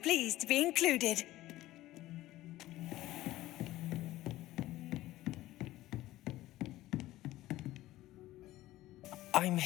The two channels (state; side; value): quieter; right; 16.1 dB